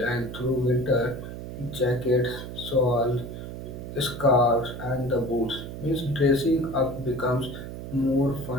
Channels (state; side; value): noise; right; hum, 9 dB below the sound